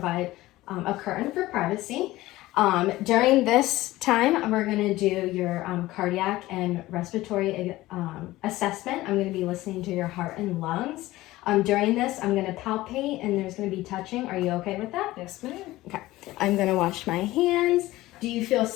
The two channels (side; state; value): right; quieter; 17.5 dB